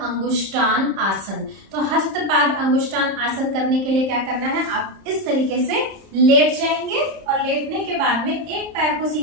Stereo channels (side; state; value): left; late; 30 ms